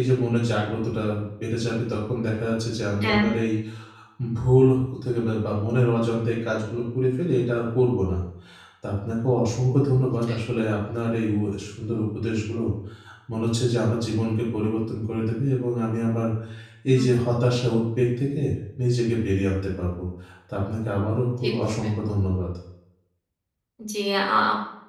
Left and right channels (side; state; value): both; identical; correlation 1.00